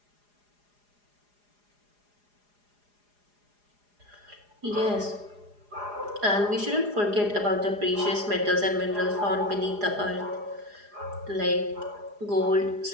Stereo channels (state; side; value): late; left; 4.9 ms